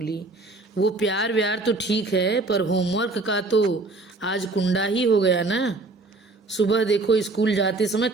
वो प्यार व्यार तो ठीक है, पर होमवर्क का तो आज कुंडा ही हो गया ना। सुबह देखो स्कूल जाते समय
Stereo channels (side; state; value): left; quieter; 3.2 dB